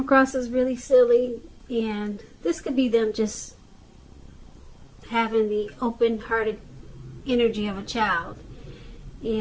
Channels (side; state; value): both; identical; correlation 1.00